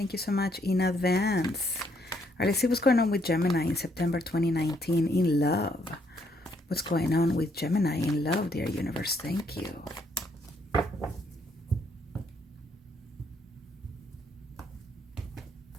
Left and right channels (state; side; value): normal; both; correlation 0.71